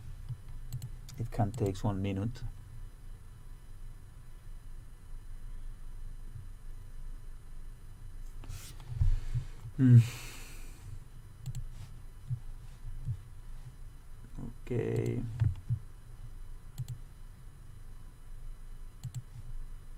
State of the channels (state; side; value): identical; both; correlation 1.00